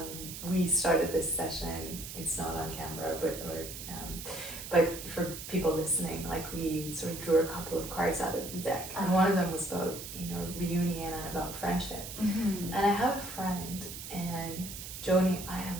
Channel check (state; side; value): noise; right; hiss, 9 dB below the sound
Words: we started this session. It's not on camera, but for people listening, like we sort of drew a couple of cards out of the deck, and one of them was about, you know, reunion and about friendship. And I have a friend, and Joni, I